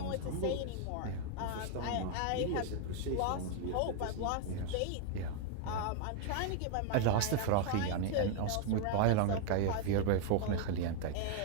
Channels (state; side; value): different; both; correlation 0.00